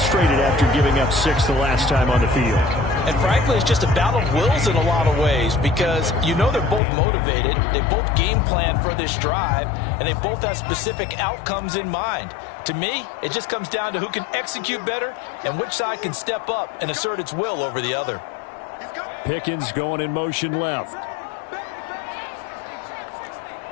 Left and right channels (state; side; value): drops out; right; at 6.8 s